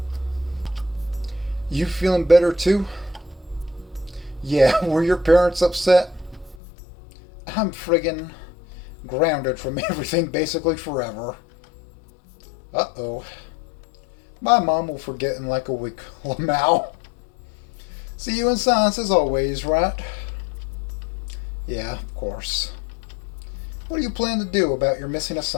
You feeling better too? Yeah, were your parents upset? I'm friggin' grounded from everything basically forever. Uh-oh. My mom will forget in like a week. Lamau. See you in science as always, right? Yeah, of course. What do you plan to do about your missing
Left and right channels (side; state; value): right; drops out; at 6.6 s